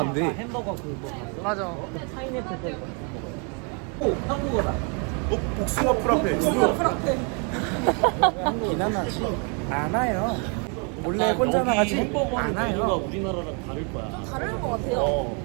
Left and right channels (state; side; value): quieter; left; 36.7 dB